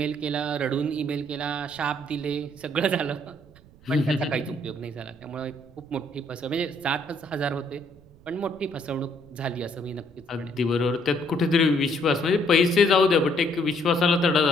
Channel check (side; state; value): right; noise; rumble, 25 dB below the sound